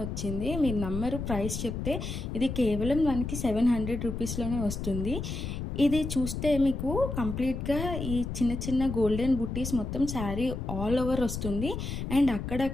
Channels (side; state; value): left; noise; rumble, 5 dB below the sound